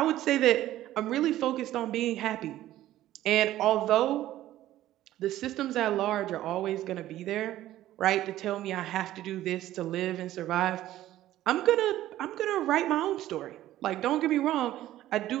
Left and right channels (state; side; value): quieter; left; 14.1 dB